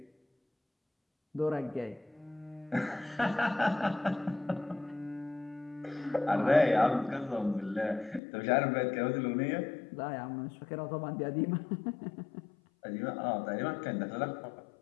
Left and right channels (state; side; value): drops out; right; at 8.2 s